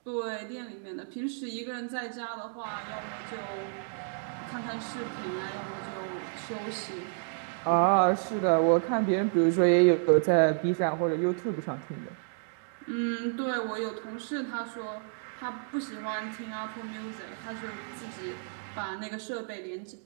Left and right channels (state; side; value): silent; left; digital silence